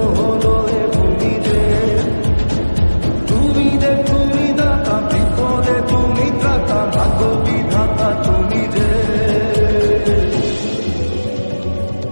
হলো এ ভূমি রে, তুমি রে তুমি দাতা বিপদে তুমি ত্রাতা ভাগ্য বিধাতা তুমি রে।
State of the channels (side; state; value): both; inverted; correlation -1.00